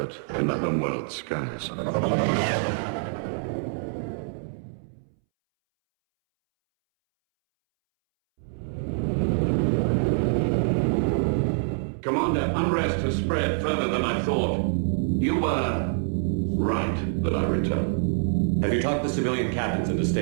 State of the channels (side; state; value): left; silent; 61 dB below the other